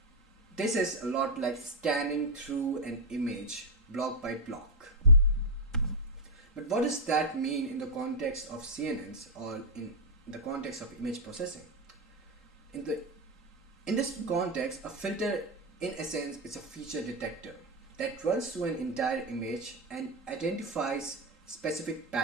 This is a lot like scanning through an image block by block. But what does that mean in the context of CNNs or in the context of image processing? In this context, a filter in essence is a feature detector that runs through an entire image and identifies specific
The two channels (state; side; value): normal; both; correlation 0.00